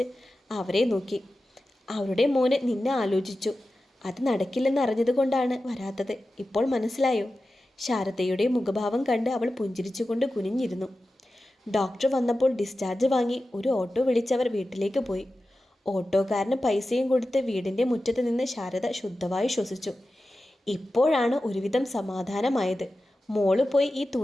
അവരെ നോക്കി. അവരുടെ മോന് നിന്നെ ആലോചിച്ചു, അത് നടക്കില്ലെന്ന് അറിഞ്ഞതുകൊണ്ടാണ് വരാത്തത്. ഇപ്പോൾ മനസ്സിലായോ? ശാരദയുടെ മുഖഭാവം കണ്ട് അവൾ പുഞ്ചിരിച്ചുകൊണ്ട് കുനിഞ്ഞിരുന്നു. ഡോക്ടർ വന്നപ്പോൾ ഡിസ്ചാർജ് വാങ്ങി ഒരു ഓട്ടോ വിളിച്ചവർ വീട്ടിലേക്ക് പോയി. ഓട്ടോക്കാരന് പൈസയും കൊടുത്ത് വീടിൻ്റെ മുറ്റത്ത് നിന്ന് ശാരദ ശുദ്ധമായി ശ്വസിച്ചു. ഇപ്പോഴാണ് ഒരുവിധം സമാധാനമായത്. മോള് പോയി ഈ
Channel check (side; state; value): both; normal; correlation 0.93